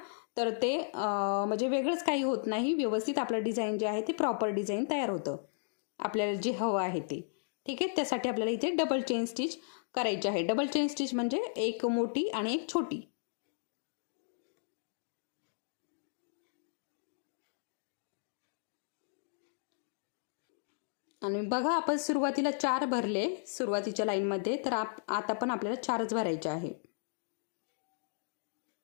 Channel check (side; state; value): right; silent; digital silence